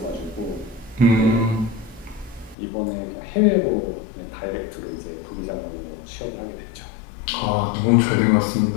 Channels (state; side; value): drops out; right; at 2.6 s